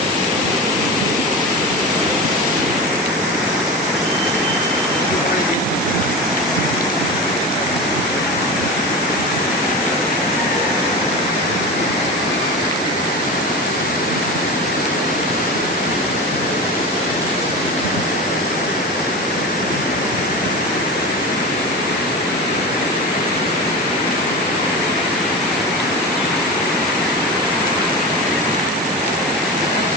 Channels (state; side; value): normal; both; correlation 0.26